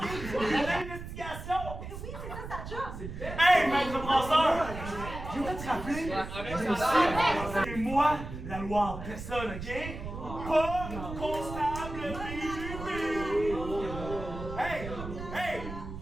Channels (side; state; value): right; noise; rumble, 9 dB below the sound